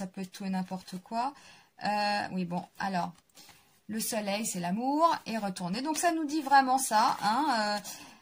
peut être tout et n'importe quoi. Oui, bon, alors, le soleil, c'est l'amour, et retourner. Donc, ça nous dit vraiment ça, hein.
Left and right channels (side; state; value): both; identical; correlation 1.00